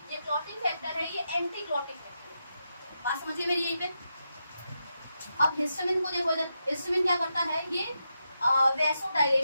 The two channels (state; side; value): inverted; both; correlation -0.86